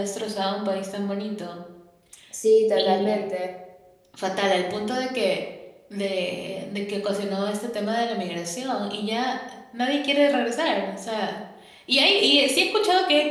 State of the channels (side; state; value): both; identical; correlation 1.00